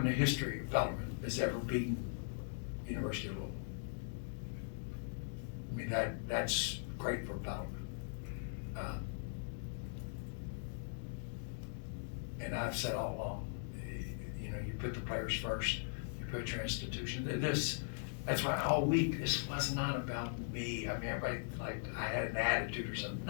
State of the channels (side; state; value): right; silent; digital silence